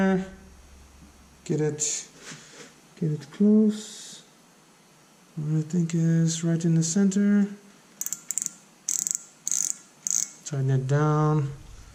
get it close. What I think is right in the center. Tighten it down.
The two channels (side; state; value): both; identical; correlation 1.00